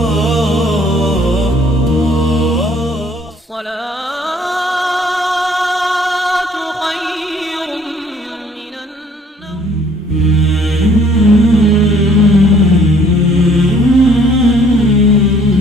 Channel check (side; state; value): both; normal; correlation 0.59